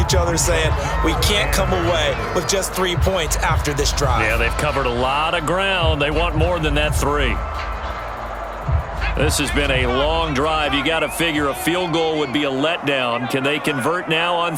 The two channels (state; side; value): identical; both; correlation 1.00